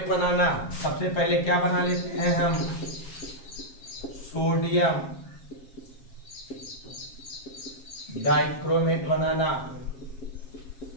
बनाना। सबसे पहले क्या बना लेते हैं हम? सोडियम डाइक्रोमेट बनाना।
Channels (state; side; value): late; right; 7.4 ms